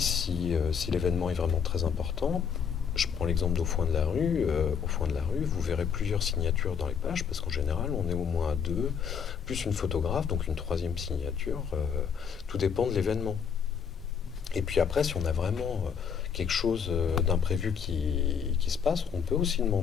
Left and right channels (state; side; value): quieter; right; 7.0 dB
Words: l'événement est vraiment très important, je prends l'exemple d'Au Foin de la rue. Au Foin de la rue, vous verrez plusieurs signatures dans les pages, parce qu'en général, on est au moins à deux, plus une photographe, donc une troisième signature. Tout dépend de l'événement. Et puis après, si on a vraiment quelque chose d'imprévu qui se passe, on peut aussi